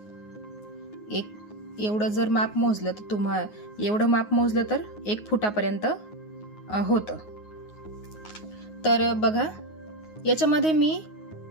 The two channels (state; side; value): late; right; 9.5 ms